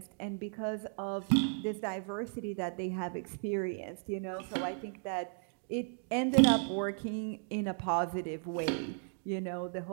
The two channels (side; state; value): left; silent; 54 dB below the other